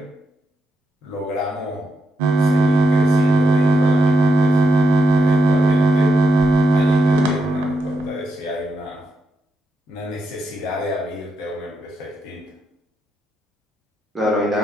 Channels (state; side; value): normal; both; correlation 0.83